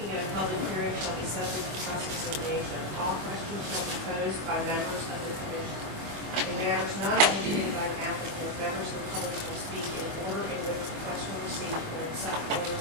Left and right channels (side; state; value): left; late; 24 ms